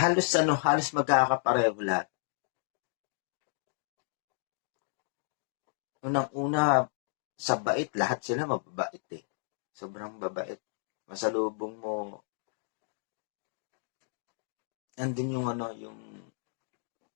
magkakapareho lahat. Unang-una, sa bait, lahat sila mababait eh. Sobrang babait. Masalubong mo, nandun yung yung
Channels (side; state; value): right; silent; digital silence